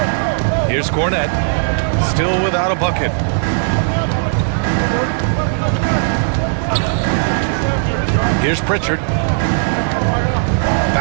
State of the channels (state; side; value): silent; left; digital silence